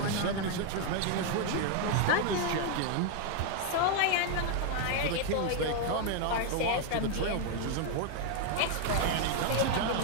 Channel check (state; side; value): different; both; correlation 0.00